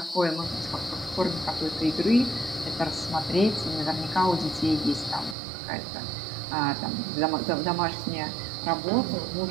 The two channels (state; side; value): drops out; left; at 5.4 s